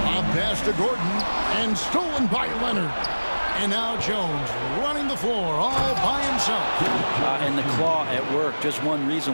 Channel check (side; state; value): both; inverted; correlation -1.00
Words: pass to Gordon and stolen by Leonard. And now Jones running the floor all by himself. And the claw at work. Just one